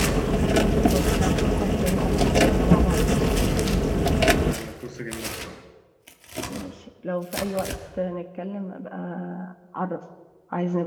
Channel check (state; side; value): identical; both; correlation 1.00